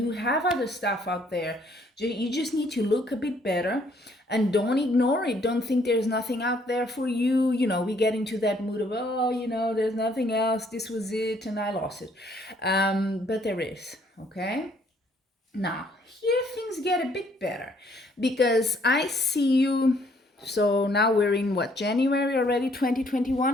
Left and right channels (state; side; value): normal; both; correlation 0.65